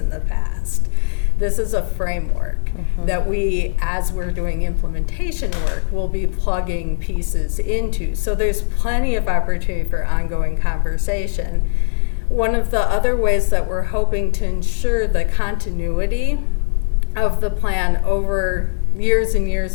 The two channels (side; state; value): right; silent; digital silence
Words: the past. This is a framework that we, as we're doing implementation work, will be plugging pieces into. So there's plenty of opportunity for ongoing conversation. One of the other ways that we're hoping to ensure the continuity of the plan over years and